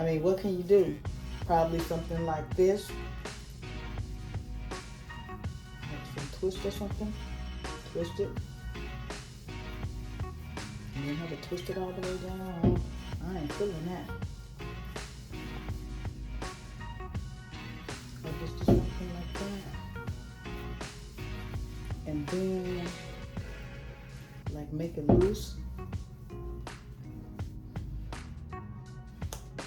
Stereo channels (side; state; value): both; identical; correlation 1.00